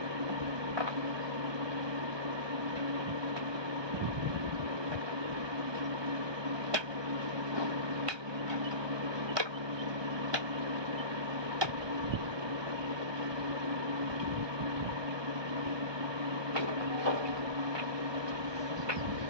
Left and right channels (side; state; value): left; late; 1.2 ms